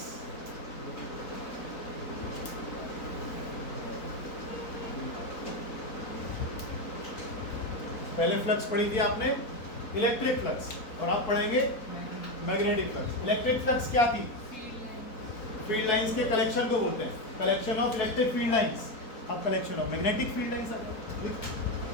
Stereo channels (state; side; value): late; right; 4.1 ms